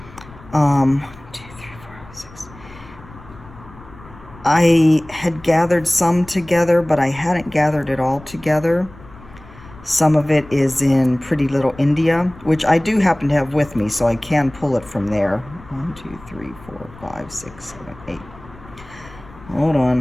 2, 3, 4, 6. I had gathered some together, but I hadn't gathered it all together. Some of it is in Pretty Little India, which I do happen to have with me, so I can pull it from there. 1, 2, 3, 4, 5, 6, 7, 8. Hold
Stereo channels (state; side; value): noise; left; rumble, 20 dB below the sound